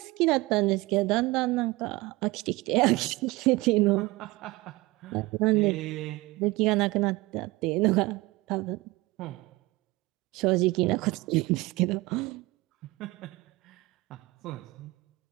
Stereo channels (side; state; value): left; quieter; 21.5 dB